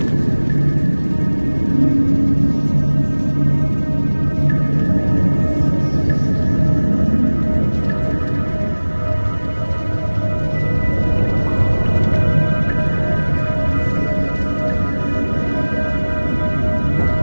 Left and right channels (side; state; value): both; inverted; correlation -1.00